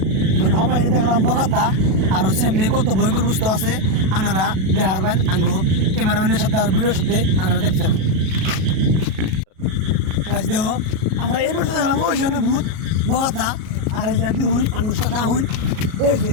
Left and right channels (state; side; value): late; left; 37 ms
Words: মানে সবাই দেখলাম বগাতা আরো সামনে কত ভয়ঙ্কর বস্তু আছে। আনারা দেখা পারবেন আঙ্গো ক্যামেরাম্যানের সাথে আর ভিডিওর সাথে আনারা দেখতে থাকুন। গাইস দেখো আমরা এই বছর দেখলাম ওই জন্য ভূত বগাতা। আর এই যে দেখুন আঙ্গুর সাথে আহুন